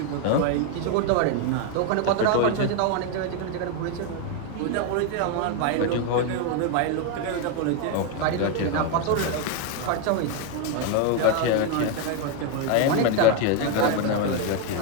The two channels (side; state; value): both; different; correlation 0.01